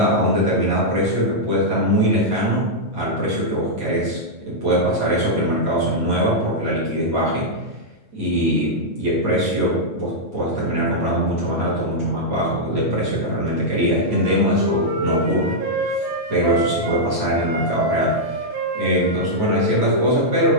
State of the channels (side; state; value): left; late; 9.1 ms